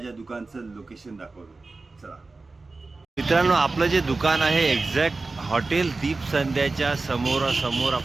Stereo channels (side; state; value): left; quieter; 3.6 dB